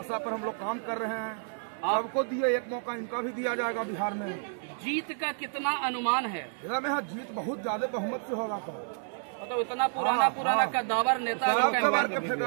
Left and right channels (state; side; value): silent; left; digital silence